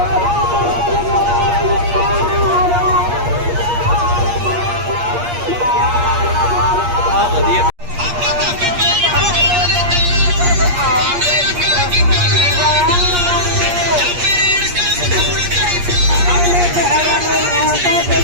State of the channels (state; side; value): late; left; 8.5 ms